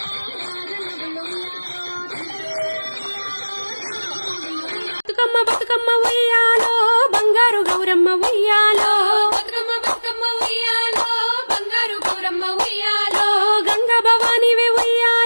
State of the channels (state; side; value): inverted; both; correlation -1.00